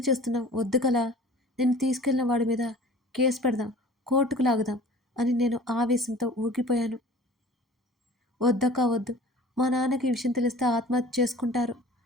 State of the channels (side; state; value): both; normal; correlation 0.45